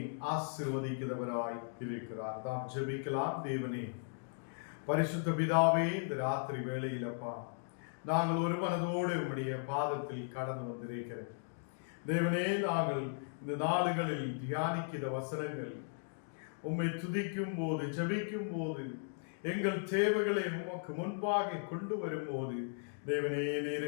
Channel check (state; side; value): silent; right; digital silence